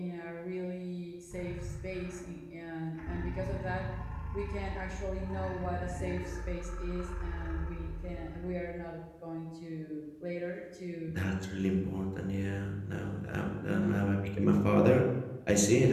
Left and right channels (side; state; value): both; identical; correlation 1.00